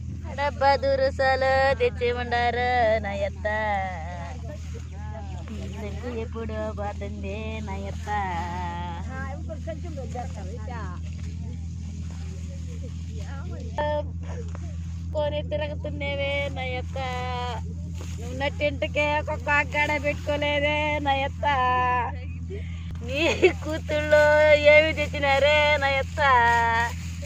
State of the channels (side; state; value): both; identical; correlation 1.00